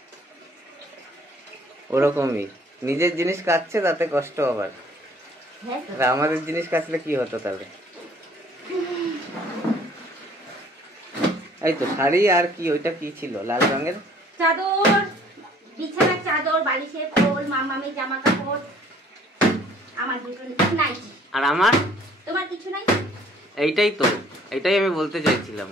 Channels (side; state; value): both; normal; correlation 0.57